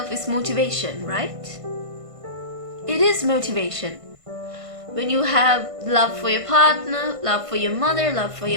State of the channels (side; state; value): left; late; 1.5 ms